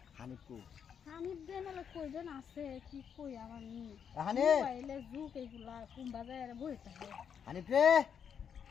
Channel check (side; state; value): right; quieter; 7.6 dB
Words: হানিফকু হানিফ দেন হলো কইবেন আছে কি কই আমার নি হানিফ মোবাইলে জুক এগুলা কোন বাজারে বই থাকে হানিফ রে